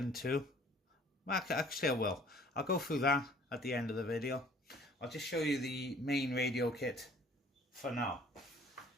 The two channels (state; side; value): normal; both; correlation 0.55